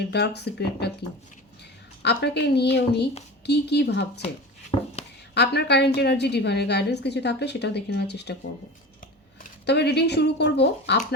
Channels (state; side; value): normal; both; correlation 0.32